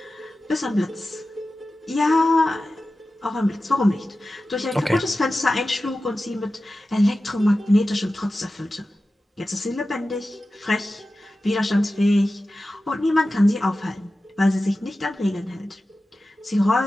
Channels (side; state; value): both; normal; correlation 0.94